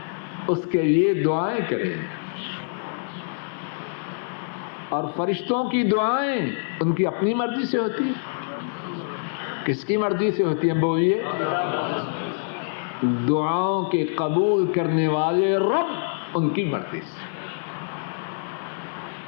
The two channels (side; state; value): right; silent; digital silence